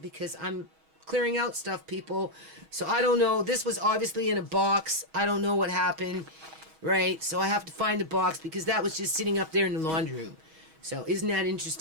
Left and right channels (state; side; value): late; left; 6.3 ms